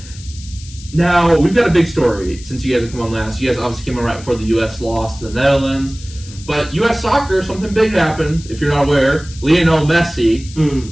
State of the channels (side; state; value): left; noise; hiss, 18 dB below the sound